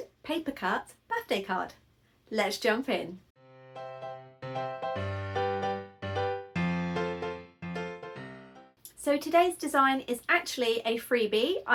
paper cut birthday card. Let's jump in. So today's design is actually a freebie.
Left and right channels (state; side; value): identical; both; correlation 1.00